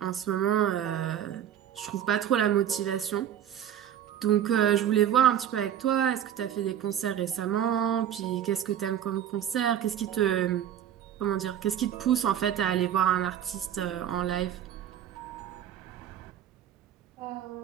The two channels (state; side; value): quieter; left; 10.2 dB